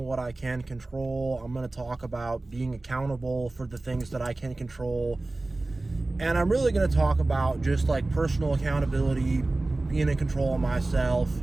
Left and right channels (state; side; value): quieter; left; 3.0 dB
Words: I can control. I'm going to talk about being accountable for the things that I can control, and I'm really going to talk about just like personal accountability, being in control of myself,